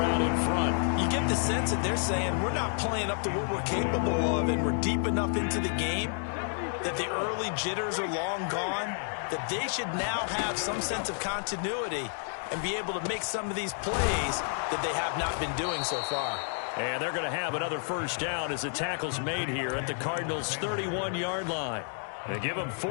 out in front. You get the sense that they're saying we're not playing up to what we're capable of, and we're deep enough into the game that the early jitters are long gone. that they should now have some sense of continuity and be able to make some of these plays that they have not been doing so far. And they're going to have another first down as the tackle's made here at the Cardinals' 31-yard line. They give them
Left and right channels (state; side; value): silent; right; 58 dB below the other